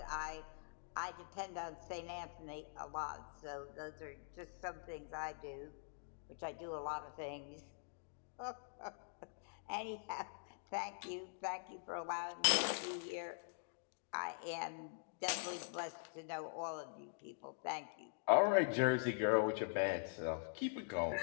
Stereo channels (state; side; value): silent; right; digital silence